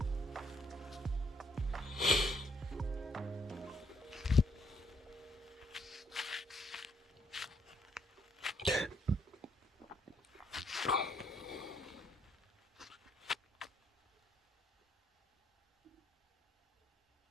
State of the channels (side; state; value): both; normal; correlation 0.71